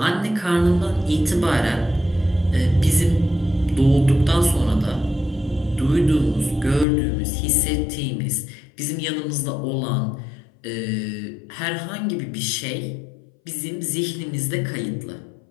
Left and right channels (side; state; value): right; drops out; at 6.9 s